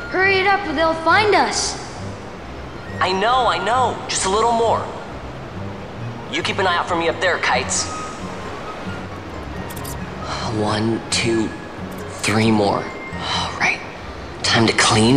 Hurry it up or they'll find us. I know. Just a little more. You keep an eye out for me up there, Kites. 1, 2, 3 more. All right. Time to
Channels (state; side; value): identical; both; correlation 1.00